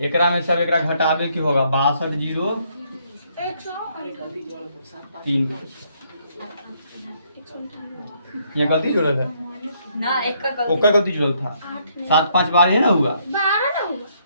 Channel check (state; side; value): inverted; both; correlation -0.70